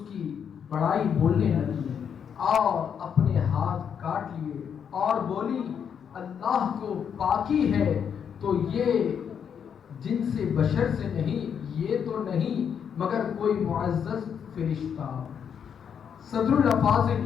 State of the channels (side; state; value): right; quieter; 7.7 dB